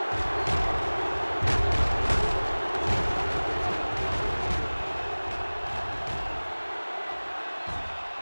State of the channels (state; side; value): inverted; both; correlation -1.00